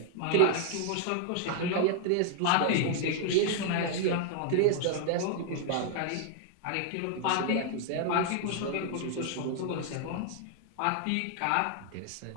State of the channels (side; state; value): both; different; correlation 0.00